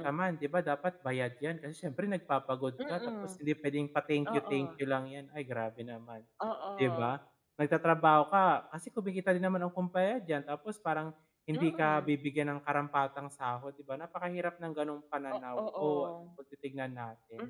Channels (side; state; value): both; identical; correlation 1.00